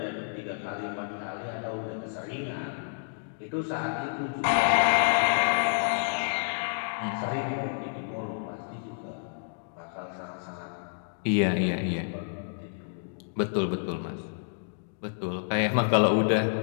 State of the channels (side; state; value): right; silent; digital silence